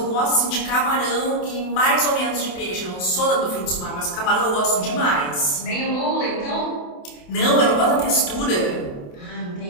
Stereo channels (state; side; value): late; right; 28 ms